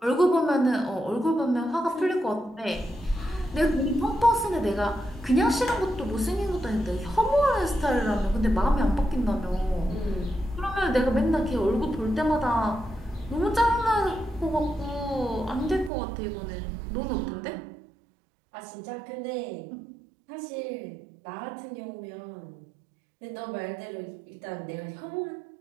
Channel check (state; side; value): drops out; left; at 15.9 s